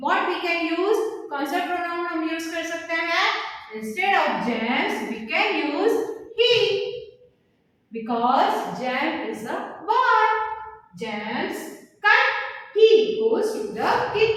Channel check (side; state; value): both; identical; correlation 1.00